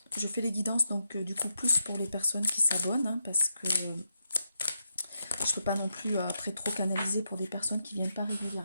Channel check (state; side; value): inverted; both; correlation -0.84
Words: fais les guidances donc du coup plus pour les personnes qui s'abonnent parce que je ne peux pas non plus après trop canaliser pour des personnes qui viennent pas